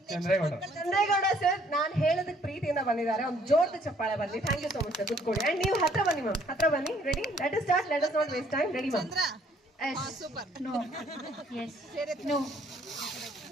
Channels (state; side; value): normal; both; correlation 0.63